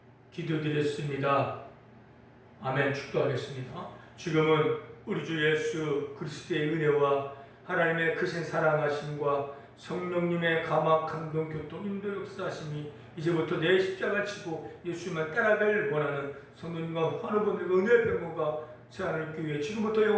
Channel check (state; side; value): identical; both; correlation 1.00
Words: 기도드렸습니다. 아멘. 축도하겠습니다. 지금은 우리 주 예수 그리스도의 은혜와 하나님의 크신 사랑하심과 성령님의 감화 감동 교통 인도 역사하심이 이제부터 내 십자가 치고 예수만 따라갈 원하는 성도님과 환우분들과 은혜의 병거가 세안을 교회 지금부터